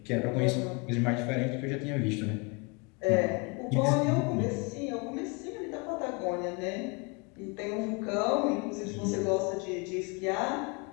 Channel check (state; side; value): quieter; right; 30.8 dB